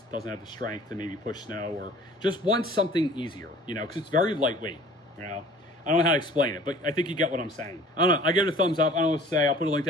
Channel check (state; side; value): normal; both; correlation 0.48